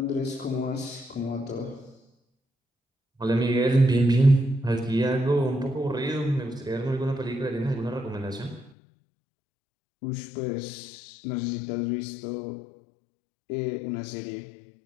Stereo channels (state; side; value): drops out; right; at 8.7 s